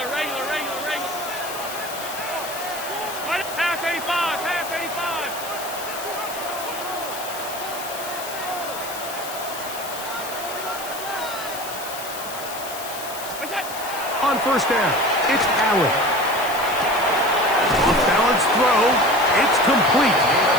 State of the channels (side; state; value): left; noise; hiss, 10 dB below the sound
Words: On 1st down, it's Allen. Off-balance throw, it's complete.